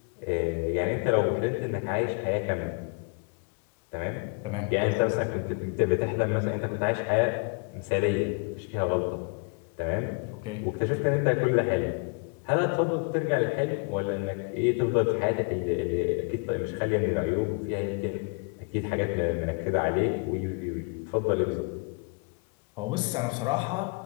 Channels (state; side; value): quieter; right; 35.0 dB